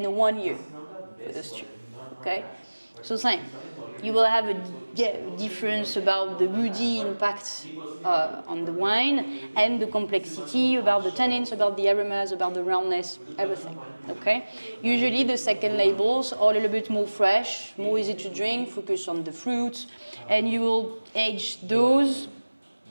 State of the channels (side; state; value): both; inverted; correlation -1.00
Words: 1 year for those 2. Okay? So same. You will have a difference about the woody impact on the wine, and the complexity about the tannins, about the aromas, about the roundness, everything. Okay? Usually the second labels are a little bit more fresh, more easy to drink, focus on the fruits, and you will age those